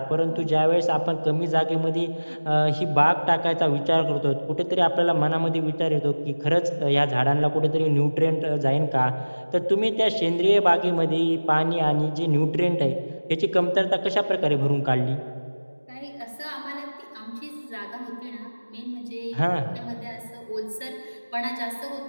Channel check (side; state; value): both; inverted; correlation -1.00